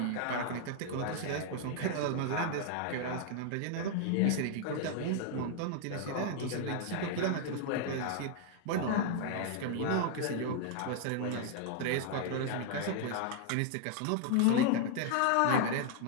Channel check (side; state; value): both; different; correlation 0.00